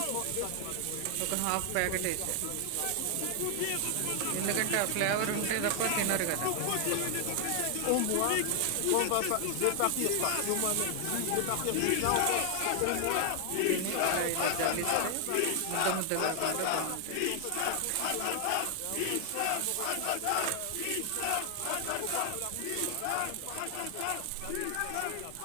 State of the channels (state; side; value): different; both; correlation 0.00